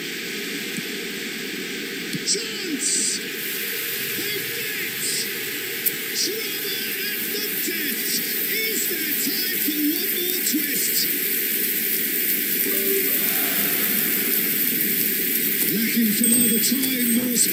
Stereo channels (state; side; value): identical; both; correlation 1.00